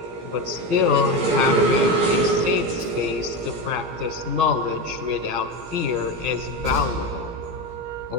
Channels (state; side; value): late; left; 17 ms